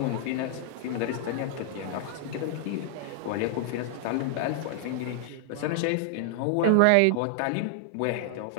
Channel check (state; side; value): different; both; correlation 0.00